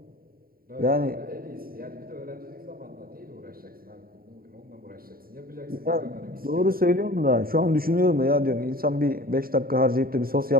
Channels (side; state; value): left; late; 0.43 ms